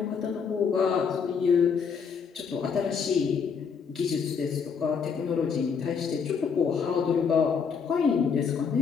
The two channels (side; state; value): right; quieter; 6.2 dB